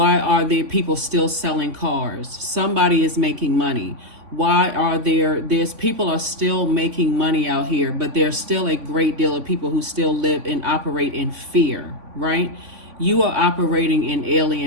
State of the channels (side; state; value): left; late; 3.5 ms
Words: are there people still selling cars? Somebody is making money. Why are there's people are still making money out here, but there's still a great deal of people who still live and operate in fear, right? You are operating in